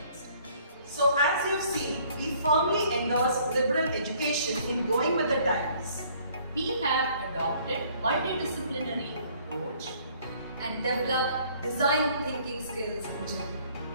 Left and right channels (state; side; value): inverted; both; correlation -0.59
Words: So as you've seen, we firmly endorse liberal education in going with the times. We have adopted multidisciplinary approach And develop design thinking skills in